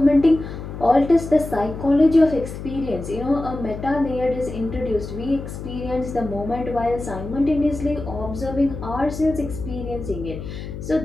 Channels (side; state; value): left; noise; hum, 9 dB below the sound